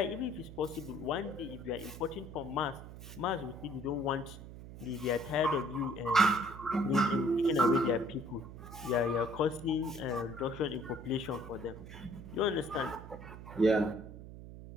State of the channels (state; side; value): noise; right; hum, 13 dB below the sound